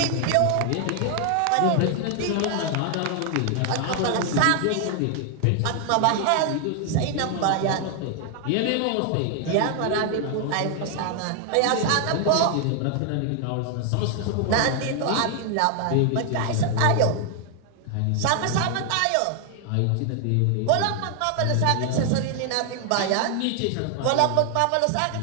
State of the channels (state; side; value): different; both; correlation 0.00